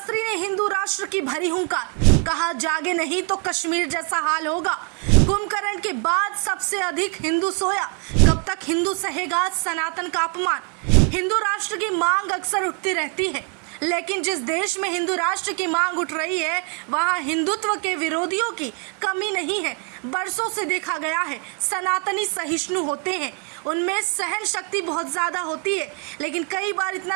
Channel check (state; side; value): quieter; left; 38.5 dB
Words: ने हिंदू राष्ट्र की भरी हुंकार, कहा जागे नहीं तो कश्मीर जैसा हाल होगा। कुंभकर्ण के बाद सबसे अधिक हिंदू सोया, कब तक हिंदू सहेगा सनातन का अपमान। हिंदू राष्ट्र की मांग अक्सर उठती रहती है, लेकिन जिस देश में हिंदू राष्ट्र की मांग उठ रही है वहां हिंदुत्व के विरोधियों की कमी नहीं है। बरसों से देखा गया है सनातनी सहिष्णु होते हैं, उनमें सहन शक्ति बहुत ज्यादा होती है, लेकिन कई बार